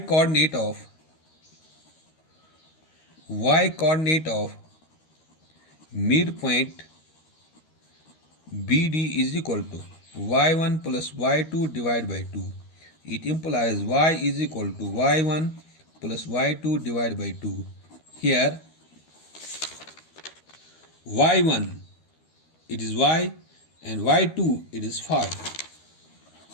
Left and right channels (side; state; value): right; late; 13 ms